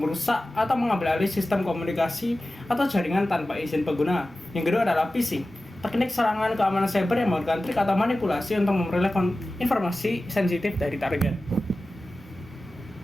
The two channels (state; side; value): normal; both; correlation 0.95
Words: merusak atau mengambil alih sistem komunikasi atau jaringan tanpa izin pengguna. Yang kedua adalah phishing, teknik serangan keamanan cyber yang menggunakan trik atau manipulasi untuk memperoleh informasi sensitif dari target.